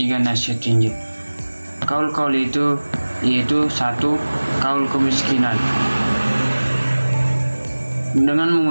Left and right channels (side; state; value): both; inverted; correlation -1.00